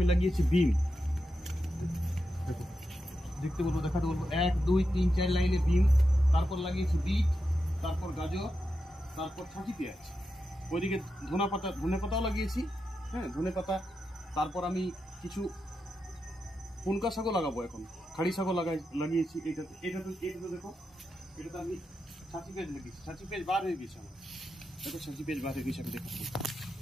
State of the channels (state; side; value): normal; both; correlation 0.88